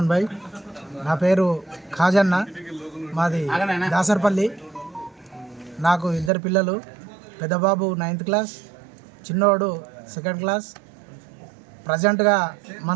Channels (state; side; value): drops out; left; at 6.3 s